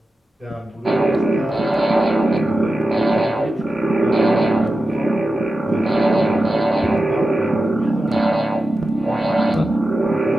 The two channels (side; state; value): both; normal; correlation 0.92